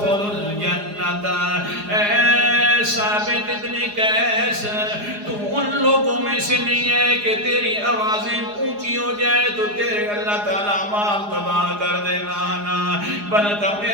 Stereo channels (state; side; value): late; left; 4.8 ms